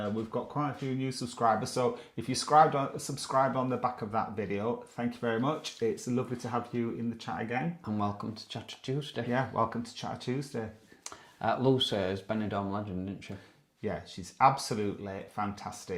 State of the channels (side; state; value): both; identical; correlation 1.00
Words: we've got quite a few new subscribers. So if you subscribed on the back of that video, thank you very much. It's lovely to have you in the chat again. And welcome to Chatter Tuesday. Yeah, welcome to Chatter Tuesday. Lucy is Benidorm legend, isn't she? Yeah, she's absolutely